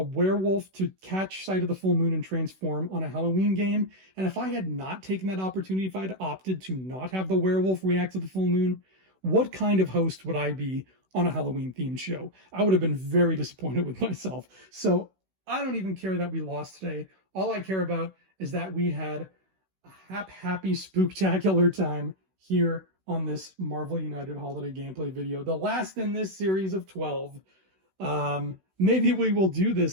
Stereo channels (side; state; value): left; late; 16 ms